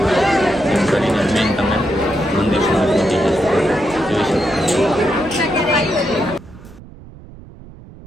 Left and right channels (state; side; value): noise; right; rumble, 19 dB below the sound